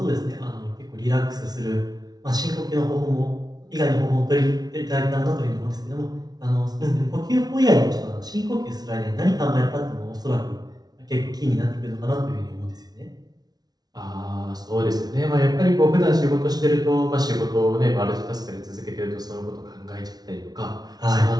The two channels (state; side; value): late; left; 0.19 ms